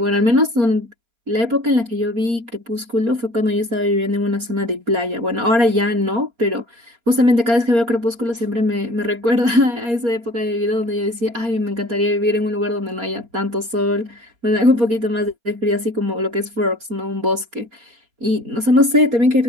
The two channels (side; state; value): left; late; 4.3 ms